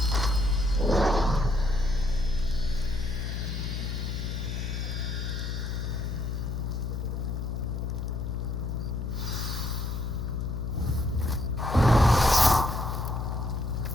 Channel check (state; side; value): noise; left; hum, 3 dB below the sound